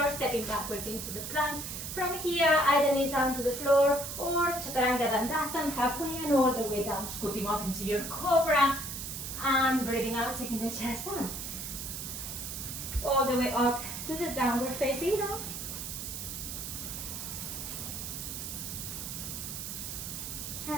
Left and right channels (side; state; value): right; noise; hiss, 6 dB below the sound